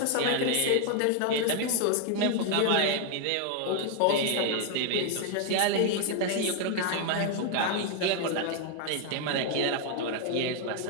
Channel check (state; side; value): different; both; correlation 0.00